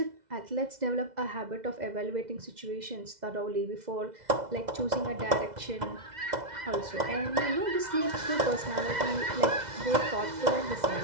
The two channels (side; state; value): left; late; 2.0 ms